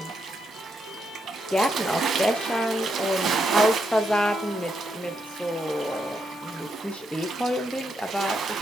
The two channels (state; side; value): normal; both; correlation 0.80